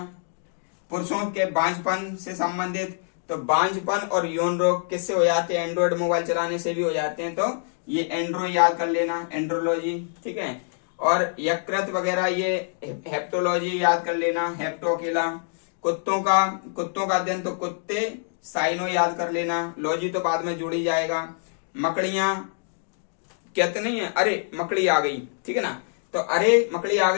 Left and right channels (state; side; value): silent; right; digital silence